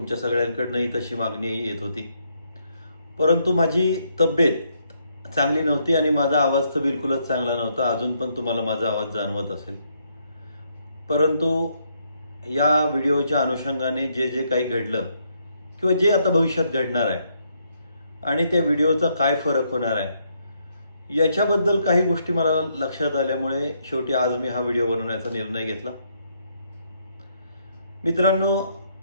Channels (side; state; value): both; inverted; correlation -0.74